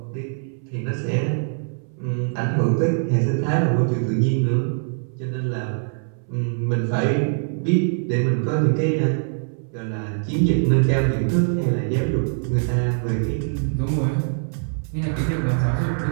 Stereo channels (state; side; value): silent; left; 64 dB below the other